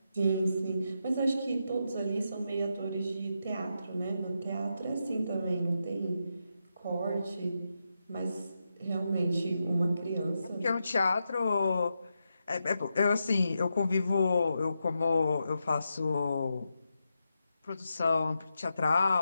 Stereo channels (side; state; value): both; inverted; correlation -0.86